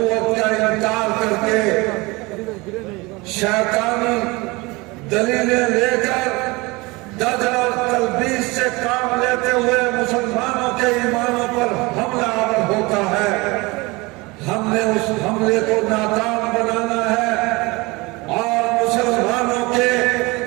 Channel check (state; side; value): quieter; left; 24.0 dB